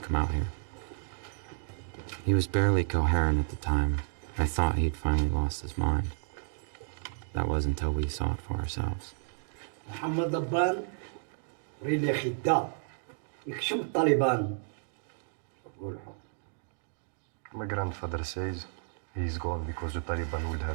out here. He was barely coherent at the time. I thought he'd finally lost his mind. That was until we saw it for ourselves. محمد أبان ريلي خدام يكشم الطالبان. My grandfather says he's gone because the Taliban would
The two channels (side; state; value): left; silent; digital silence